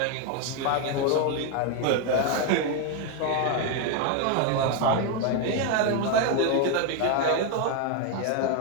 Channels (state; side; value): different; both; correlation 0.01